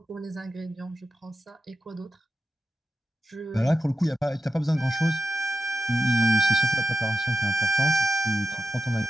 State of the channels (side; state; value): both; normal; correlation 0.91